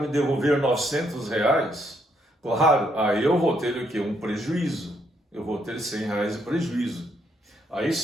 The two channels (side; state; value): both; normal; correlation 0.73